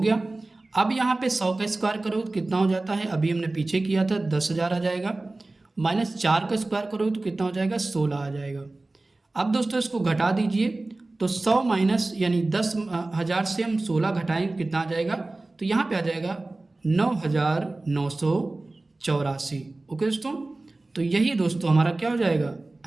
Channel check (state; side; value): quieter; left; 3.0 dB